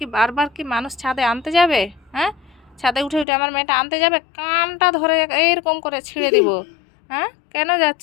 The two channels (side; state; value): right; drops out; at 3.2 s